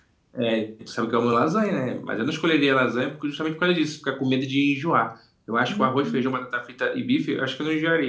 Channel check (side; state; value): both; identical; correlation 1.00